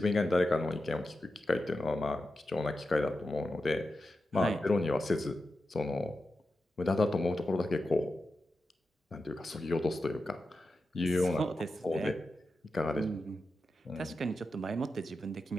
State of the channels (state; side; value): normal; both; correlation 0.90